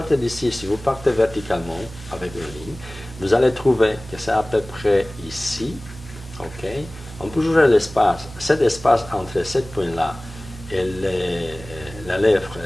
d'ici, si vous partez verticalement avec une ligne, vous allez trouver que c'est à peu près ici, ok? On peut jouer l'espace, cet espace entre ce point-là et la lèvre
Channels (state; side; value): noise; right; hum, 15 dB below the sound